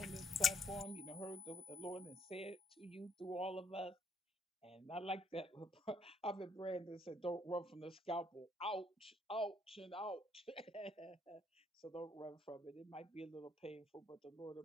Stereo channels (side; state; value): both; normal; correlation 0.68